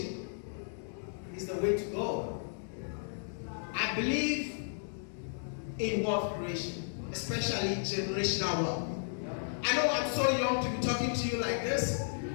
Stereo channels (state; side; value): silent; right; digital silence